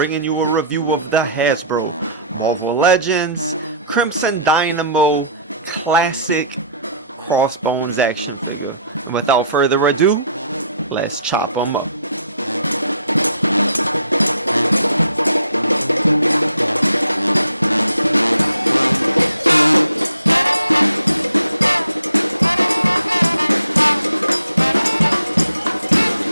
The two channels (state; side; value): inverted; both; correlation -0.60